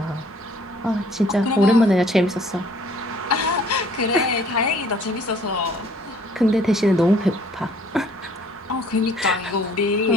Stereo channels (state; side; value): normal; both; correlation 0.58